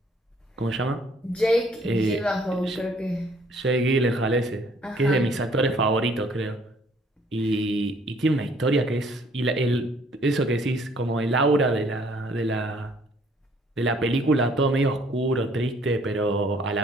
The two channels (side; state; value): both; normal; correlation 0.61